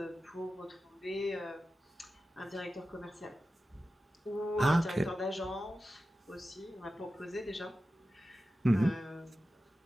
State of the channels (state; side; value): normal; both; correlation 0.93